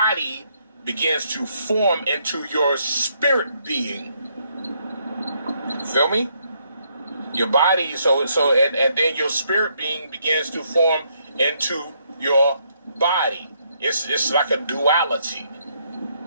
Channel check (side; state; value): both; inverted; correlation -0.73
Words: begins to form into your spirit being. Feel me? Your body, and then your spirit being begins to form into your body. It's like a duality.